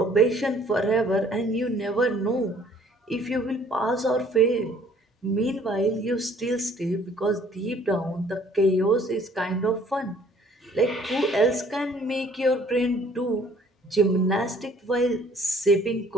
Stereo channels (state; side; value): normal; both; correlation 0.58